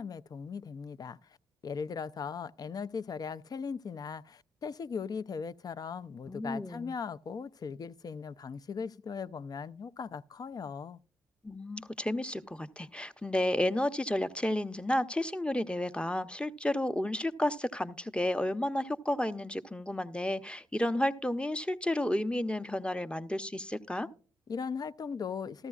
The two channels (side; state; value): both; normal; correlation 0.89